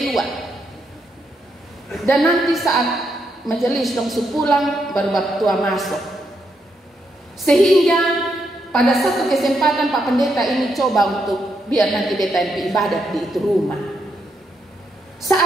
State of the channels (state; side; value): normal; both; correlation 0.80